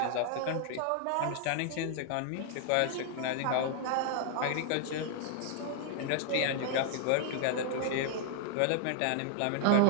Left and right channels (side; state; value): both; different; correlation 0.00